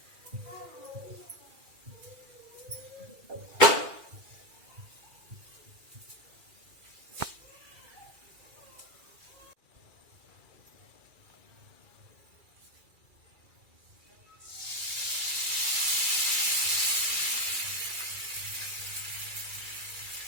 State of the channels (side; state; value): left; late; 2.3 ms